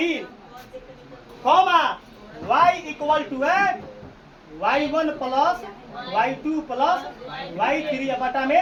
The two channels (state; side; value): identical; both; correlation 1.00